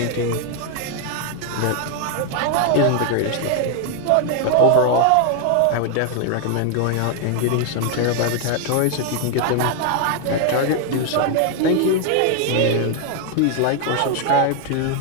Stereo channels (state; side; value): different; both; correlation 0.00